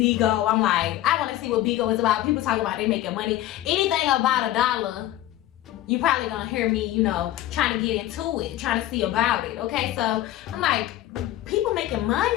I'm like, I want to see what Bigo is about. People talk about they making money. Anything about $1, you probably gonna hear me, trying to get into it, trying to see about it. Okay, so I'm like, people making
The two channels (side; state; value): right; quieter; 14.2 dB